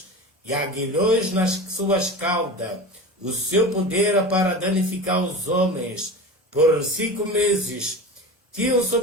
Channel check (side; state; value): both; normal; correlation 0.30